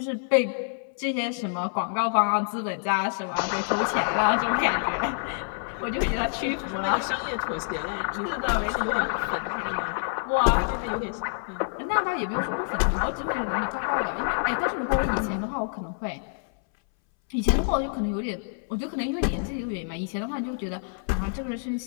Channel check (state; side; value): silent; right; 60 dB below the other